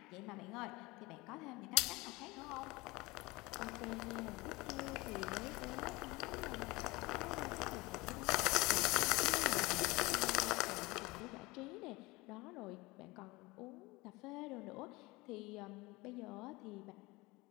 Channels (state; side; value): quieter; right; 22.7 dB